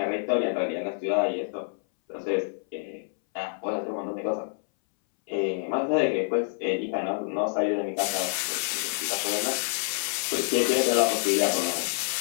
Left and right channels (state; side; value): silent; right; 60 dB below the other